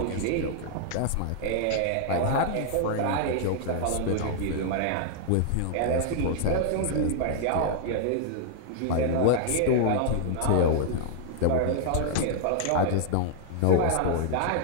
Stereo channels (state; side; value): different; both; correlation 0.00